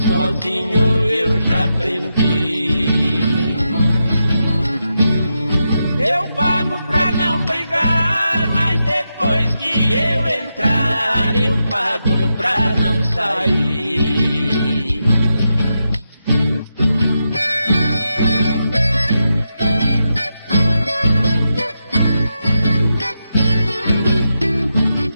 sozinho eu já aprendi. Eu pago pra não brigar, mas depois que eu entrar, eu pago pra não sair.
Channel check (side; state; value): both; inverted; correlation -0.87